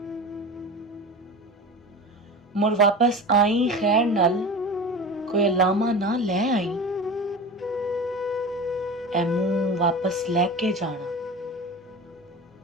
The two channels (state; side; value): normal; both; correlation 0.32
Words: मुड़ वापस आई खैर नाल, कोई लामा ना ले आई। ए मुंह वापस लैके जाना,